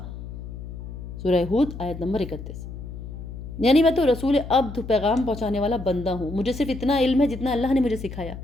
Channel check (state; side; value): noise; left; hum, 10 dB below the sound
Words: سورہ ہود آیت نمبر 31۔ یعنی میں تو رسول عبد، پیغام پہنچانے والا بندہ ہوں، مجھے صرف اتنا علم ہے جتنا اللہ نے مجھے سکھایا،